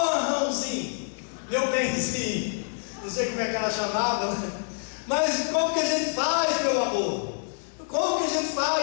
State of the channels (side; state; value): right; silent; digital silence